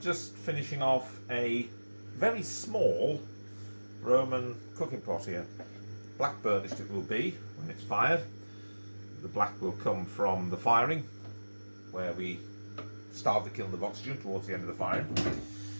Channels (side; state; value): both; inverted; correlation -1.00